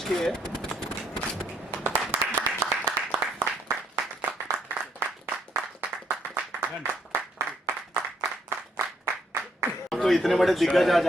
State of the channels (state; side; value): normal; both; correlation 0.70